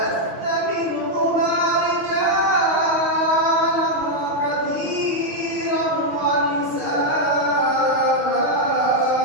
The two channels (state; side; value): late; left; 6.3 ms